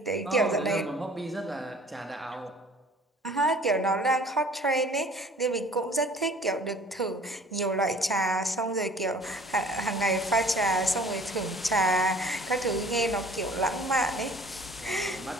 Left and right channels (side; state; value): both; normal; correlation 0.50